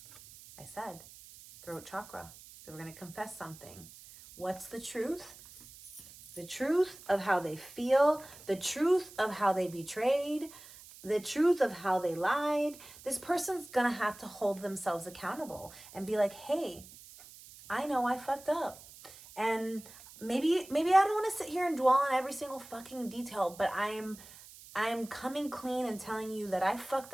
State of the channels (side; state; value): right; noise; hiss, 19 dB below the sound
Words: I said, throat chakra. They were going to confess something. What's the truth? The truth of how they feel, the truth of how they betrayed, the truth of how they lied. This person's going to have to hold themselves accountable and be like, hey, I know I fucked up. And maybe I don't want to sit here and dwell on every single fucking detail, but I'm coming clean and telling you that I fucked